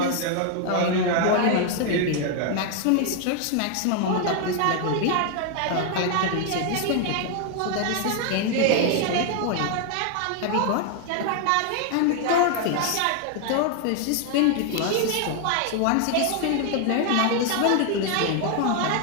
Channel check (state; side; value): different; both; correlation 0.00